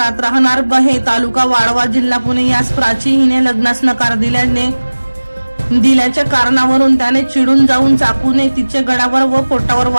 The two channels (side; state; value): both; inverted; correlation -1.00